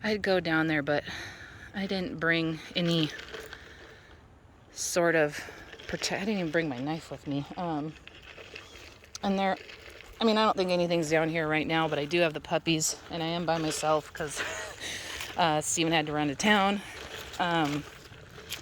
I'd go down there, but I didn't bring any sort of I didn't even bring my knife with me. And there, I mean, I don't think anything's down here right now, but I do have the puppies, and I am by myself because Steven had to run to town. And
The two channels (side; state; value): both; identical; correlation 1.00